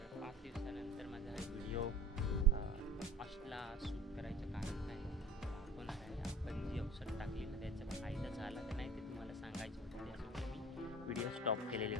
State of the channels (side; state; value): both; normal; correlation 0.44